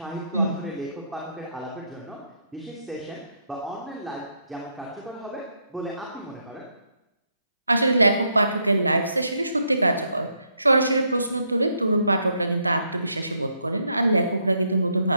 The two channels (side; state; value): both; inverted; correlation -0.75